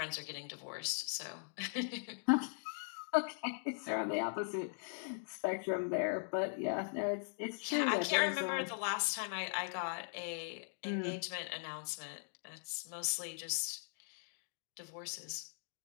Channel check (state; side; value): silent; right; digital silence